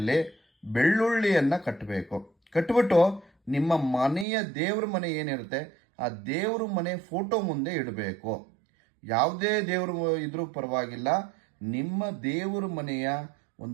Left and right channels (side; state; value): left; drops out; at 4.2 s